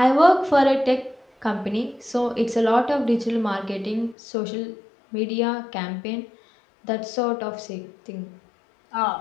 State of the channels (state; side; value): drops out; right; at 4.2 s